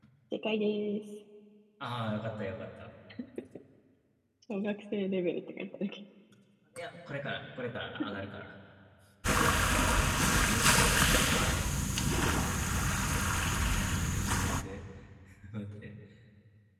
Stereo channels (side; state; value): both; identical; correlation 1.00